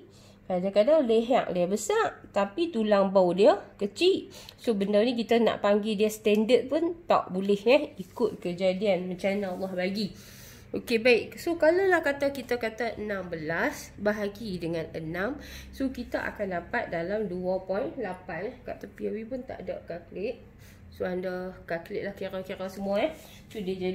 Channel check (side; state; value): both; identical; correlation 1.00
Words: Kadang-kadang leher dia besar tapi tulang bau dia kecil. So benda ni kita nak panggil dia standard pun tak boleh ikut kejadian macam mana Allah bagi. Okey, baik. So kalau lah kita kata 16 bahagi dengan 6, so kita akan dapat dalam 2.8. Kat tepi Awi pun tak ada kalkulat. So anda kalkulat lah kira-kira semua So dia